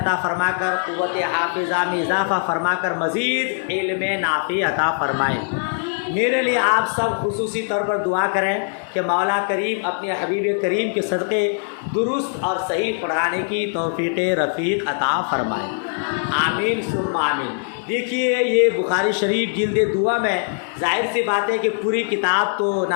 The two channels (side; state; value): right; silent; digital silence